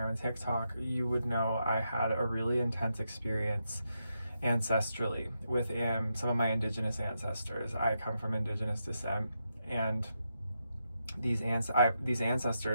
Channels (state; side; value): inverted; both; correlation -0.84